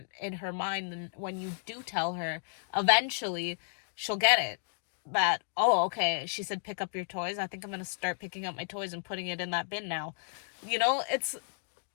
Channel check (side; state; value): right; silent; digital silence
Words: in her mind. And when you do tell her, eventually she'll get it, that, oh, okay, she said pick up your toys, I think I'm going to start picking up my toys and putting it in that bin now. It's,